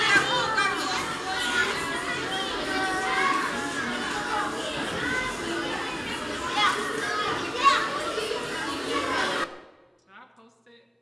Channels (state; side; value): identical; both; correlation 1.00